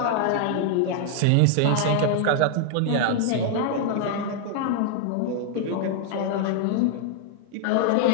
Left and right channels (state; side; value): different; both; correlation 0.00